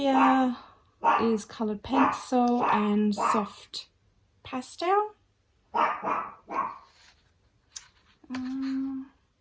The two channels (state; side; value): identical; both; correlation 1.00